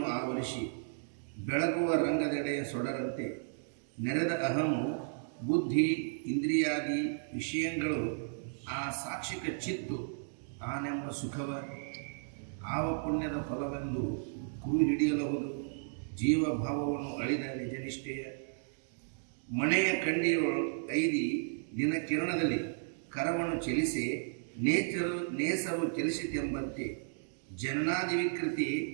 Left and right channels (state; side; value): silent; left; digital silence